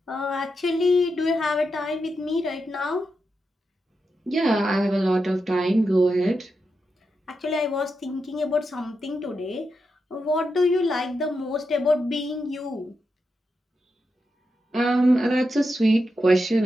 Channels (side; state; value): both; normal; correlation 0.87